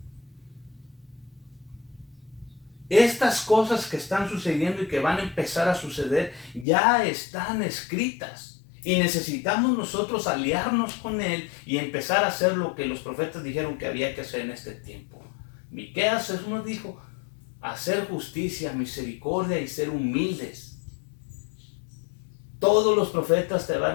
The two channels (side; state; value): right; drops out; at 6.7 s